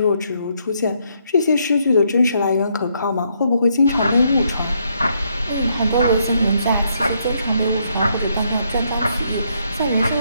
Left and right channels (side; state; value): both; inverted; correlation -0.74